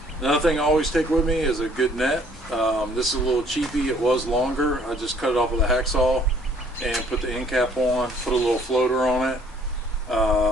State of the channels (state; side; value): normal; both; correlation 0.60